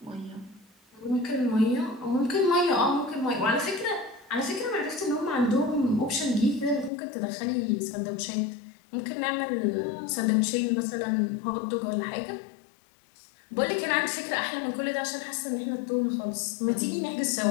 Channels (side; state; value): right; drops out; at 6.9 s